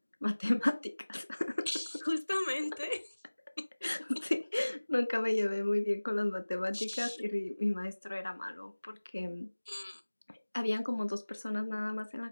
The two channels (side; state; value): both; inverted; correlation -1.00